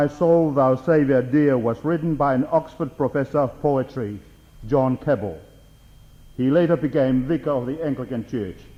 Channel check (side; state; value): both; identical; correlation 1.00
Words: Soul, Thou Saviour Dear was written by an Oxford professor of poetry, John Keble. He later became vicar of the Anglican Church.